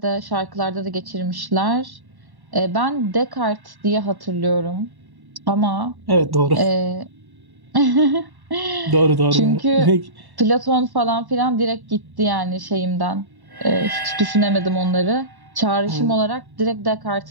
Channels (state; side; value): late; left; 1.1 ms